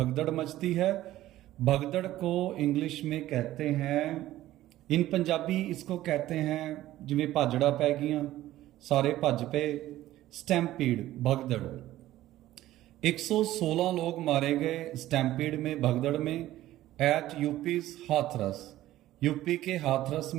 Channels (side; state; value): left; quieter; 14.8 dB